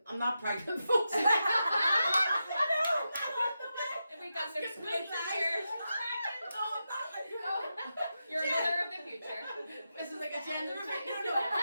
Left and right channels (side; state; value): both; inverted; correlation -0.88